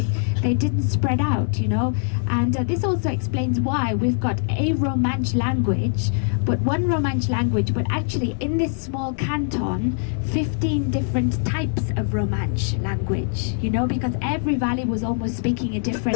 didn't spread out, you know. And this also explains why we've got a Romansh language, but one Romansh language, but actually in this small canton, 15 different types of Romansh language, you know, because every valley was almost speaking a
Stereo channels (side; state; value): right; silent; digital silence